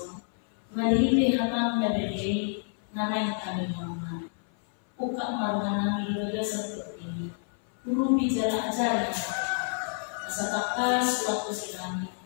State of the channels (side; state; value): right; silent; 57 dB below the other